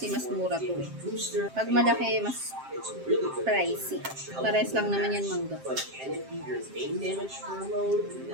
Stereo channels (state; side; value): late; left; 7.6 ms